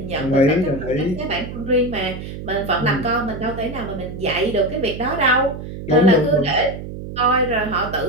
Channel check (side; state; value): right; noise; hum, 9 dB below the sound